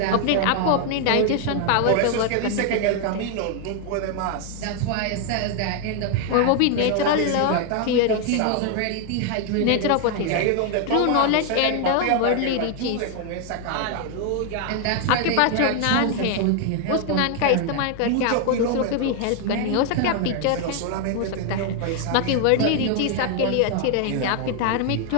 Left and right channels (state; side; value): different; both; correlation 0.00